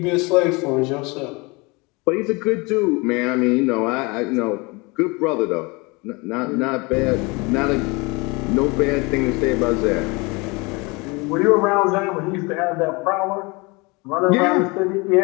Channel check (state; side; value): quieter; right; 26.9 dB